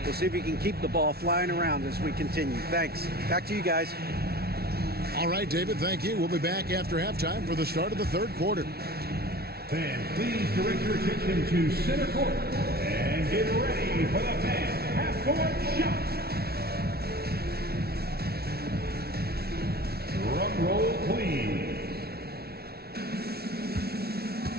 We'll see if we can keep the ball flying around as we continue. Thanks. Back to you guys. All right, David, thank you. We'll be back after halftime for the start of the 3rd quarter. Fans, please direct your attention to center court and get ready for the fan half-court shot. Drum roll, please.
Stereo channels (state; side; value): late; left; 0.45 ms